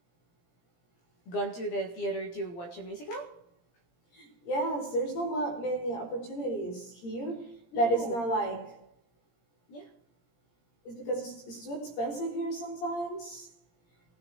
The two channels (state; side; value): late; right; 17 ms